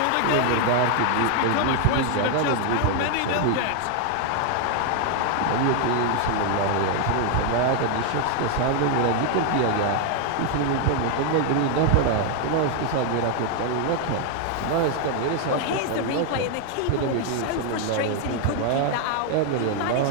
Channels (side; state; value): both; different; correlation 0.00